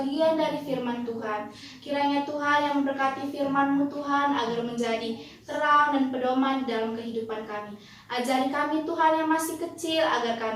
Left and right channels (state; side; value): identical; both; correlation 1.00